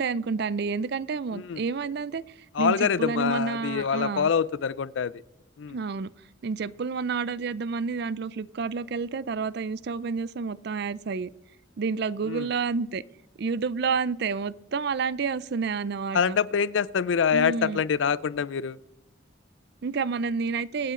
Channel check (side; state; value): both; normal; correlation -0.08